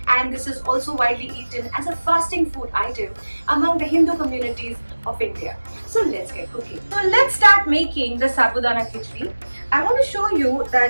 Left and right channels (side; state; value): both; inverted; correlation -1.00